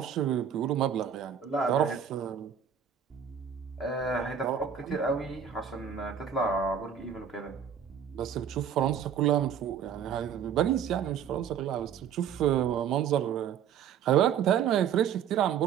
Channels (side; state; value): left; quieter; 8.2 dB